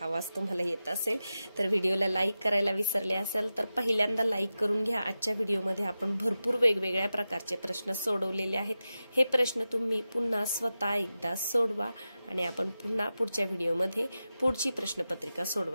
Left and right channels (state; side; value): inverted; both; correlation -0.92